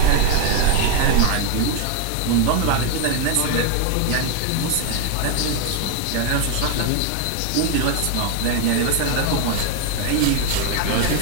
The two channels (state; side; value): different; both; correlation 0.01